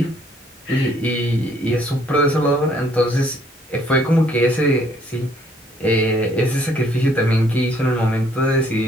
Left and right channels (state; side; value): normal; both; correlation 0.64